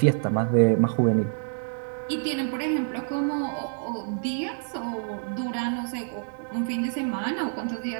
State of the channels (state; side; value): silent; left; digital silence